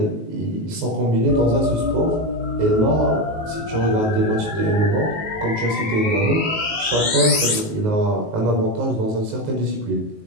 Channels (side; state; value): left; late; 19 ms